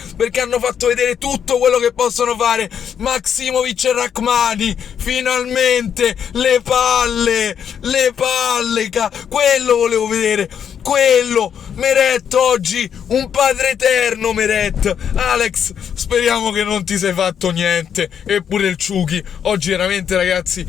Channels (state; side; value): quieter; right; 8.2 dB